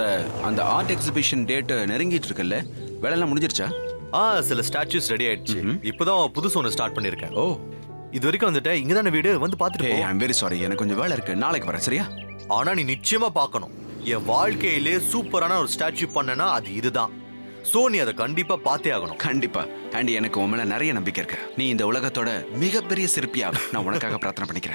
அந்த ஆர்ட் எக்ஸிபிஷன் டேட் நெருங்கிட்டு இருக்குல்ல, வேலையெல்லாம் முடிஞ்சிருச்சா? சில ஸ்டாச்சுஸ் ரெடி ஆயிடுச்சு. இப்பதான் புதுசு ஒன்று ஸ்டார்ட் பண்ணிருக்கேன். ஓ, இது வரைக்கும் வந்துட்டேன். இங்க தானே வீடு, வந்து பாத்துட்டு போ. ஐம் வெரி சாரி, எனக்கு கொஞ்சம் வேலை இருக்கு. நாளைக்கு வரேன், சரியா? ஆனா நீ நிச்சயமா பார்க்கணும். என் வாழ்க்கையிலே சூப்பரான ஒரு ஸ்டாச்சு பண்ணனா அது இதுதான். சோ நீ அதை கண்டிப்பா பார்த்தே ஆகணும். கண்டிப்பா. அண்ட் எனக்கு உன் மேல நிறைய நம்பிக்கை இருக்கு. நீ இந்த உலகத்தோட மிகப்பெரிய சிற்பியா நான் உனக்காக பிரார்த்தனை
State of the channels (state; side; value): inverted; both; correlation -1.00